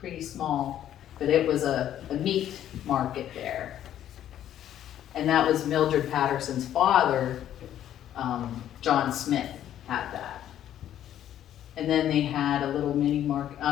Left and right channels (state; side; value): quieter; right; 11.2 dB